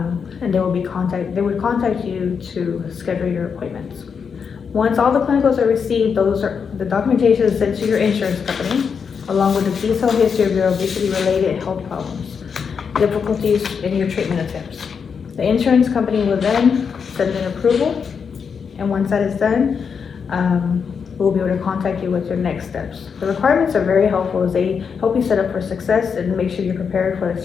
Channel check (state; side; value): quieter; right; 6.3 dB